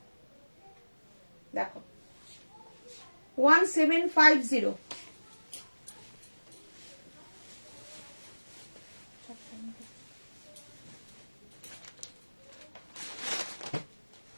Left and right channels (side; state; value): both; inverted; correlation -1.00